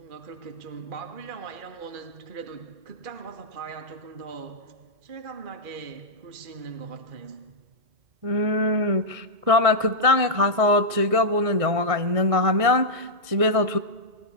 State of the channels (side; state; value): left; late; 1.6 ms